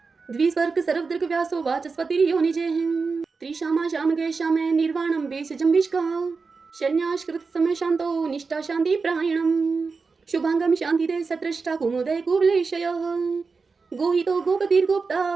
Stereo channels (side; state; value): left; quieter; 4.6 dB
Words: द्विस्वर्ग सर्वदृग व्यासो वाचस्पतिर्यो निजे त्रिशामा श्याम गए श्यामे निर्वाणम वेश जम्बिष्का शन्याश्कृत समय शांतो निष्ठा शांति प्रायणम शुभांगम शांति दे सत्रष्टा कुमुदय कुवलेशय गोहितो गोपतिर्गोप्ता